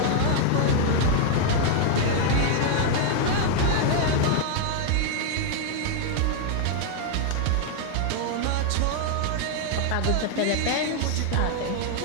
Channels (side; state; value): both; different; correlation 0.00